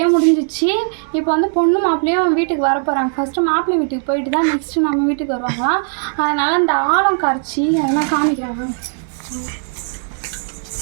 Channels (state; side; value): silent; left; 62 dB below the other